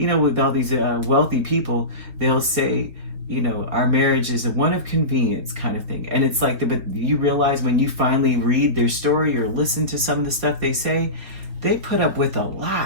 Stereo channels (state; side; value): late; left; 3.9 ms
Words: all these wealthy people, they'll say, our marriage is one of convenience kind of thing. And it's like, but you realize when you finally read their story or listen to some of the stuff they say, they put up with a